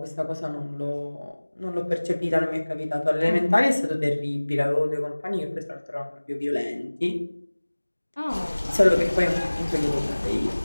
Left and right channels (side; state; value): both; inverted; correlation -1.00